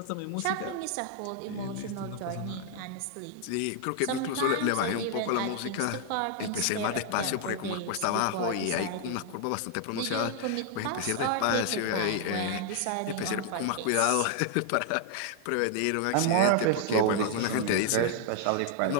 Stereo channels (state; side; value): different; both; correlation -0.01